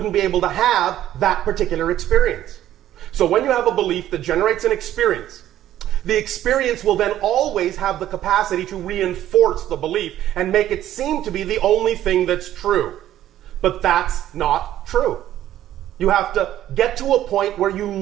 be able to have that particular experience. So when you have a belief that generates an experience, the experience will then always have the capacity to reinforce the belief and make it seem to be the only thing that's true. But that's not true. You have to get to a point where you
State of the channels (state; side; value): quieter; left; 12.5 dB